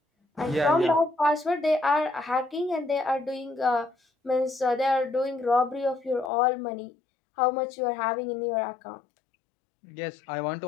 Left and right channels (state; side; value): drops out; right; at 6.3 s